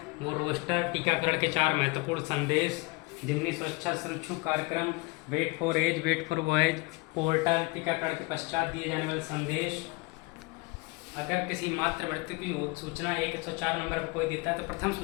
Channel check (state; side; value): quieter; right; 26.2 dB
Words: वो रोस्टर टीकाकरण के 4 महत्वपूर्ण संदेश, जिनमें सुरक्षा सुरक्षित कार्यक्रम, weight for age, weight for voice, portal, टीकाकरण के पश्चात दिए जाने वाले संदेश। अगर किसी मात्र मृत्यु की सूचना 104 नंबर पर कोई देता है तो प्रथम